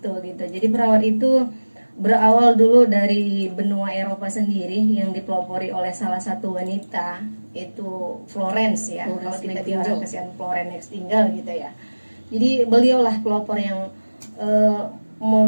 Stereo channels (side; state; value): both; inverted; correlation -1.00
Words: gitu. Jadi perawat itu berawal dulu dari benua Eropa sendiri yang dipelopori oleh salah satu wanita, itu Florence ya. Kalau kita di orang kasihan Florence Nightingale gitu ya. Jadi beliaulah pelopor yang